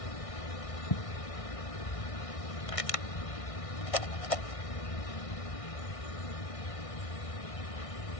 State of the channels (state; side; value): late; right; 1.6 ms